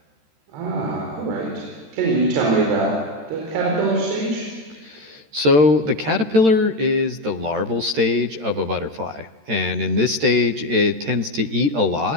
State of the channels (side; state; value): left; late; 13 ms